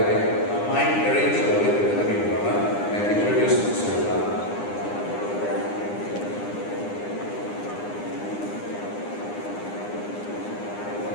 main arrange gue tadi mana, and introduce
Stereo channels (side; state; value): right; late; 9.8 ms